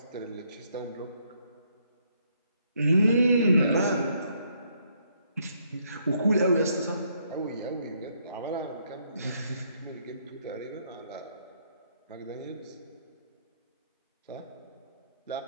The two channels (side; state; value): both; inverted; correlation -0.72